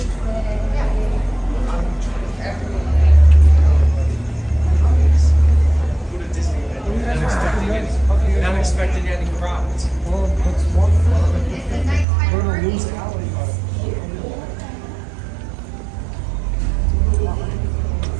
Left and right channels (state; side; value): drops out; left; at 12.1 s